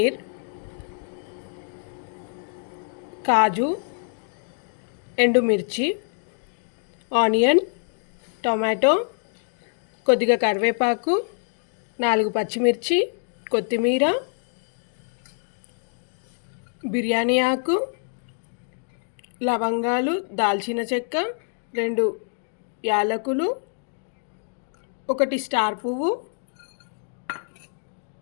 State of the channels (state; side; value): silent; right; digital silence